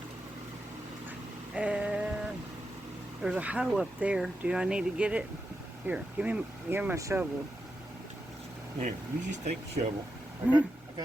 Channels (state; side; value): normal; both; correlation 0.87